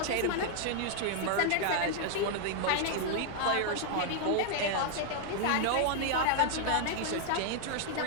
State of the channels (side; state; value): both; different; correlation 0.00